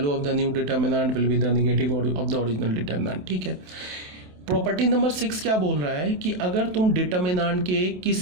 of the new determinant will be the negative of the original determinant। ठीक है, प्रॉपर्टी नंबर 6 क्या बोल रहा है कि अगर तुम डिटर्मिनेंट के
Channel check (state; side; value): late; left; 27 ms